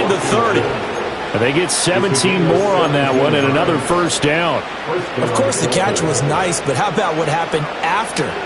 the 30. And they get 17 more on that one and another first down. Of course, the catch was nice, but how about what happened after?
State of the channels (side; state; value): both; identical; correlation 1.00